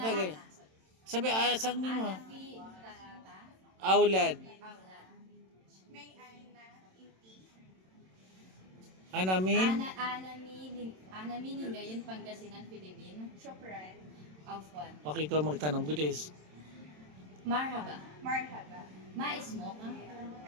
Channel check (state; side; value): late; left; 27 ms